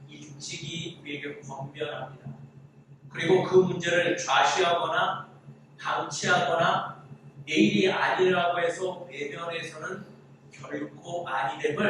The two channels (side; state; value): both; identical; correlation 1.00